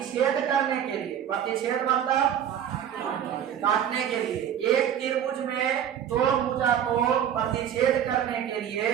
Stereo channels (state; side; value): quieter; left; 9.6 dB